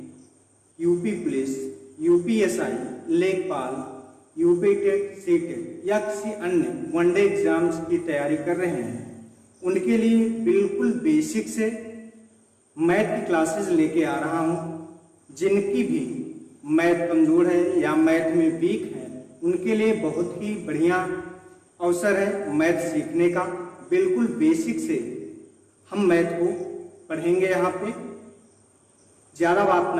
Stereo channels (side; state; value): both; identical; correlation 1.00